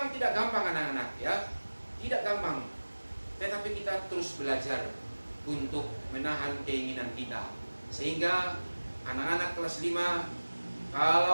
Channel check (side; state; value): both; inverted; correlation -1.00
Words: tidak gampang anak-anak, ya, tidak gampang. Tetapi kita terus belajar untuk menahan keinginan kita. Sehingga anak-anak kelas 5